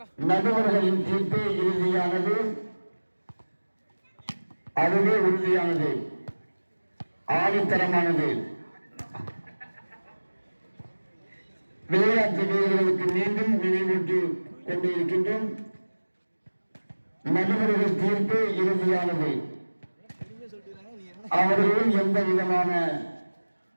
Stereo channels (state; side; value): inverted; both; correlation -1.00